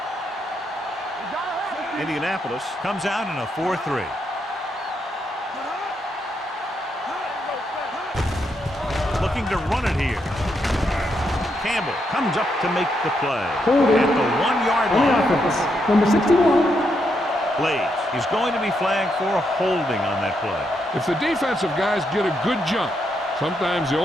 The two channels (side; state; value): both; normal; correlation 0.80